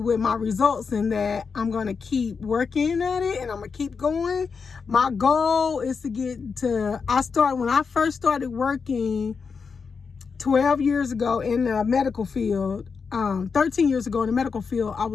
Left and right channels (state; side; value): quieter; right; 5.4 dB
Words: my results, and that I'm going to keep working at it, and I'm going to keep going. My goal is to when I first started working 12 years ago in the medical field, 13 years ago in the medical field, I